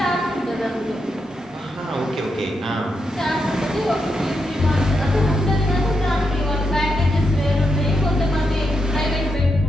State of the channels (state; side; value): normal; both; correlation 0.84